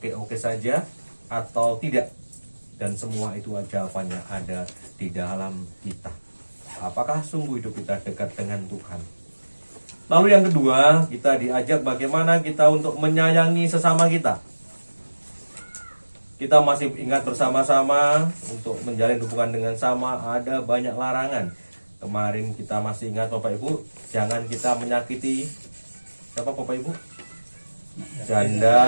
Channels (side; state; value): both; inverted; correlation -1.00